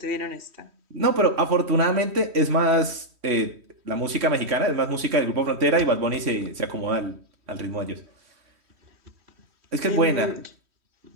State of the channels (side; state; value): left; late; 3.1 ms